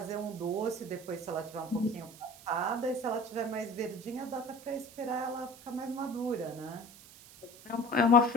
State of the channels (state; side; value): noise; right; hiss, 20 dB below the sound